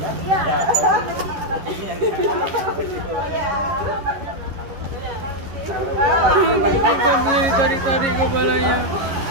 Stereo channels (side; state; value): left; late; 11 ms